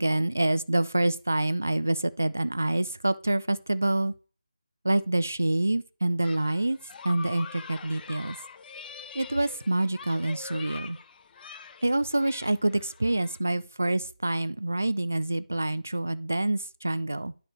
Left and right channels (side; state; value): both; inverted; correlation -0.97